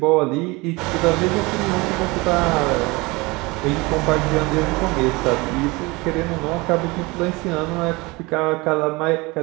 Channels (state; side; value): quieter; left; 24.1 dB